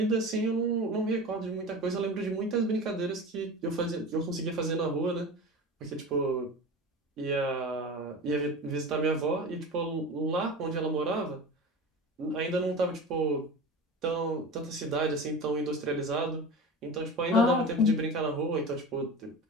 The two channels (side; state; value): both; normal; correlation 0.31